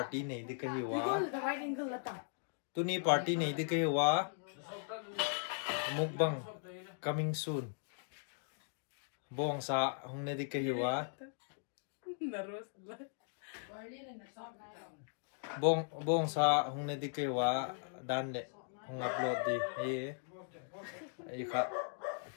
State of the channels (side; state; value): right; silent; digital silence